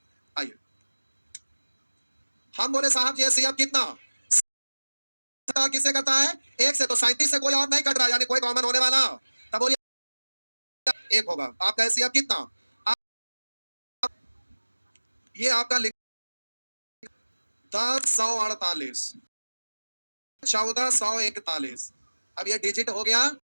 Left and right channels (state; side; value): inverted; both; correlation -1.00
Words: आइए हम बोले साहब ये सीएफ कितना किससे करता है, 1 से, तो 37 से कोई और नहीं कट रहा, यानी कोई कॉमन होने वाला, तब बोलिए 1 होगा, आपका सीएफ कितना, ये आपका 1048 1441, अब ये डिजिट हो गया।